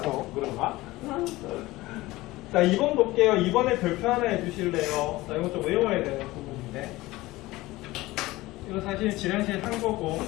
그런가? 자, 2번 볼게요. 2번에 별표 하나 해주실래요? 자, 이거 좀 외워야 되는 부분인데. 이거 사실 지난시에 한 거고.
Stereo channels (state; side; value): quieter; right; 19.0 dB